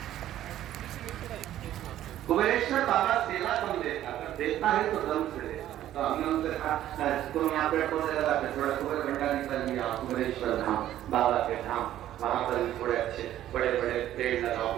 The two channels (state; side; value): quieter; left; 12.6 dB